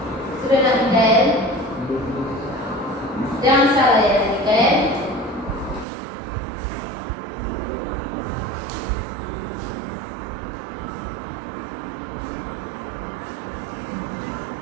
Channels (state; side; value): drops out; left; at 5.9 s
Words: Sudah nak Mikael? Jangan salah ya Mikael.